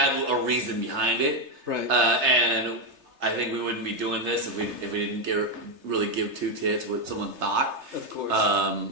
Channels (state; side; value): late; left; 3.3 ms